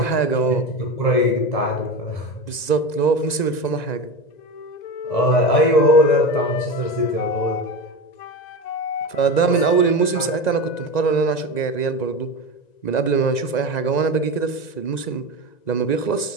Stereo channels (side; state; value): right; late; 1.9 ms